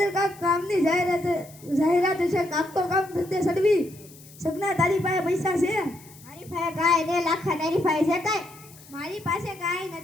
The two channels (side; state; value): left; noise; hiss, 22 dB below the sound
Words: કાક કામની જાહેરાત છે. કામ તો કામ ધંધે સડવી સગના તારી પાસે પૈસા છે? મારી પાસે કાંઈ ને લાખા તારી પાસે છે કાંઈ? મારી પાસે કાંઈ